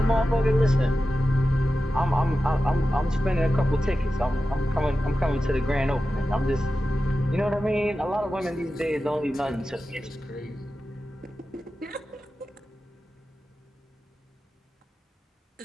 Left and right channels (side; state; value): both; normal; correlation 0.93